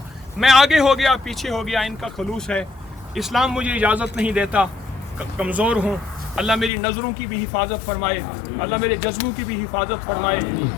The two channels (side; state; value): right; drops out; at 6.7 s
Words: میں آگے ہو گیا پیچھے ہو گیا. ان کا خلوص ہے. اسلام مجھے اجازت نہیں دیتا. کمزور ہوں. اللہ میری نظروں کی بھی حفاظت فرمائے. اللہ میرے جذبوں کی بھی حفاظت فرمائے.